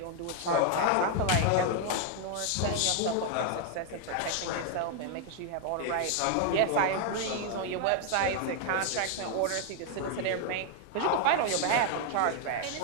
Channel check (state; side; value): different; both; correlation 0.00